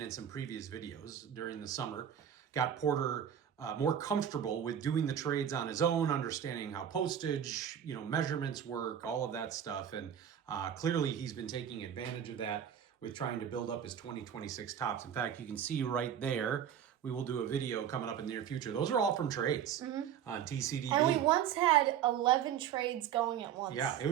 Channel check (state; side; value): quieter; left; 9.3 dB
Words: in some previous videos during the summer, got Porter more comfortable with doing the trades on his own, understanding how postage, measurements work, all of that stuff. And clearly he's been taking advantage of that with trying to build up his 2026 tops. In fact, you can see right there, we will do a video coming up in the near future. Those are all from trades on TCDB. And we once had 11 trades going at once. Yeah, it